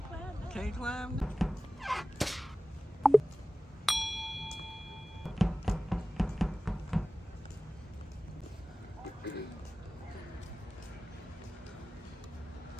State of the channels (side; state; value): both; normal; correlation 0.97